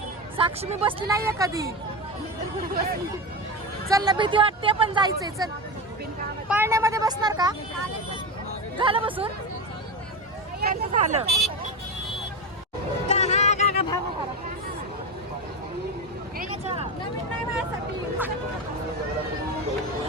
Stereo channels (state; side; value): normal; both; correlation 0.20